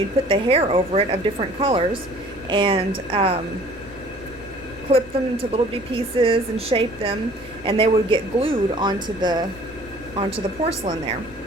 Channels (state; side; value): noise; left; rumble, 22 dB below the sound